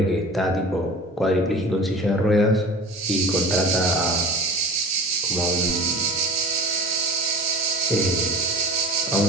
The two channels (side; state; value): both; normal; correlation 0.38